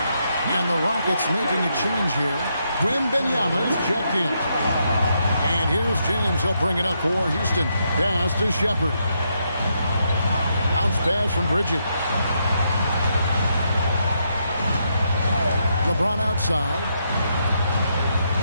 And the Rockets making a change here. Wembanyama's checked in. And here's James. He'll bring it up for Houston. Pass to Shepard. Bounce pass from Bridges. LeBron outside.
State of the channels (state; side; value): inverted; both; correlation -0.79